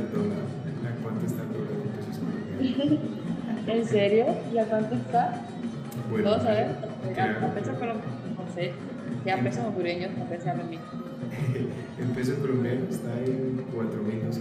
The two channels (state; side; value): identical; both; correlation 1.00